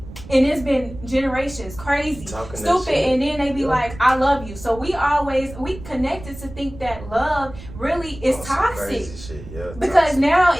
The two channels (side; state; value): right; noise; rumble, 15 dB below the sound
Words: And it's been generations crazy, stupid, and then they be like, I love you. So we connected to think that love really is toxic. Because now